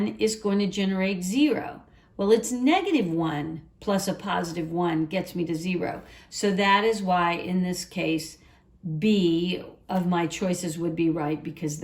is going to generate 0? Well, it's negative 1 plus a positive 1 gets me to 0. So that is why, in this case, B of my choices would be right, because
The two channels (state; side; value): identical; both; correlation 1.00